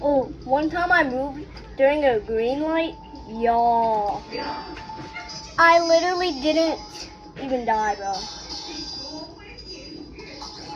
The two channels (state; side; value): identical; both; correlation 1.00